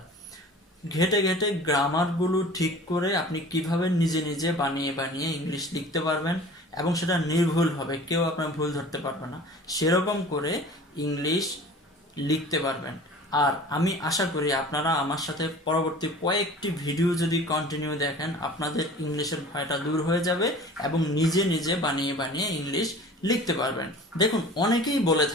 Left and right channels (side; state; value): both; normal; correlation 0.43